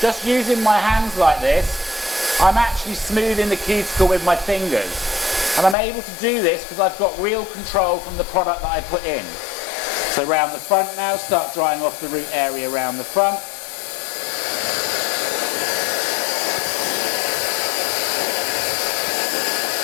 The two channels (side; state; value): right; drops out; at 5.8 s